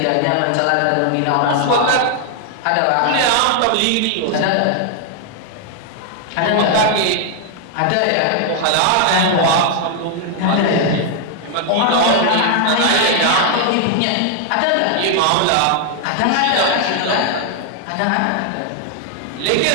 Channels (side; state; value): both; different; correlation 0.00